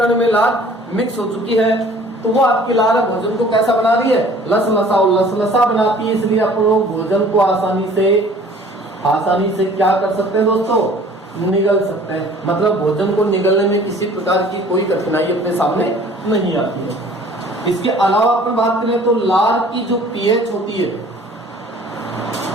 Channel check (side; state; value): both; normal; correlation 0.51